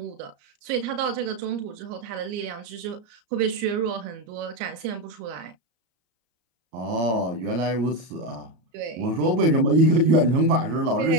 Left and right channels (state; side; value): late; left; 34 ms